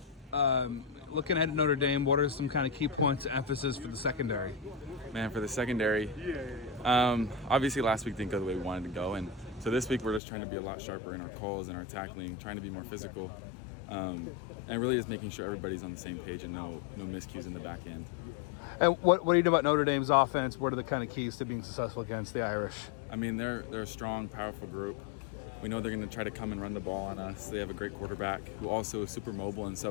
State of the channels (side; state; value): right; drops out; at 10.2 s